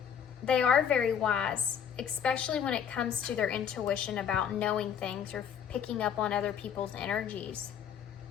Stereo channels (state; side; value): quieter; right; 8.3 dB